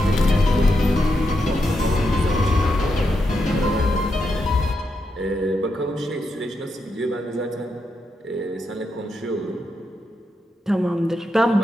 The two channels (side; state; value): both; normal; correlation 0.83